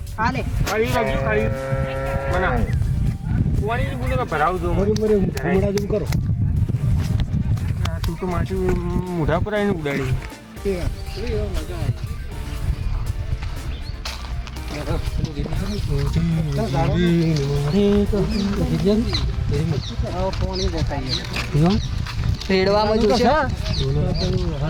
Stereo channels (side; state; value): both; identical; correlation 1.00